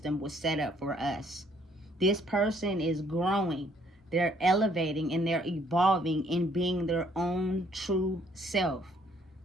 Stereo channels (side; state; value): both; normal; correlation 0.65